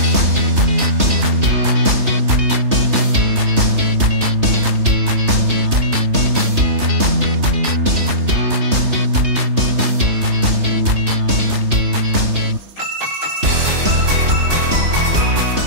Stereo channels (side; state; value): left; late; 3.3 ms